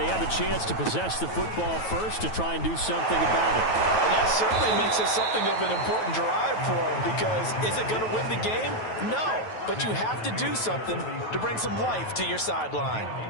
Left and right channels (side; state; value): right; late; 9.2 ms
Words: have a chance to possess the football first to try and do something about it. And that certainly makes it something of an important drive for them because is it going to win the game? No, but you have to do something to bring some life to your sideline.